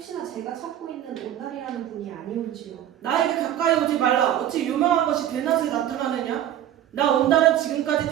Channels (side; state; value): left; quieter; 11.5 dB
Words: 제가 찾고 있는 온달이라는 분이 아니온지요? 나에게 가까이 오지 말라. 어찌 유명한 것이 대낮에 나타나느냐? 나 온달은 지금까지